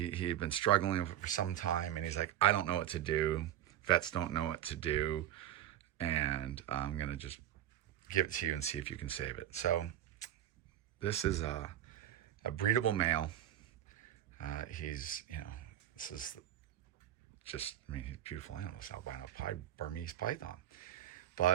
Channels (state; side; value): quieter; left; 11.8 dB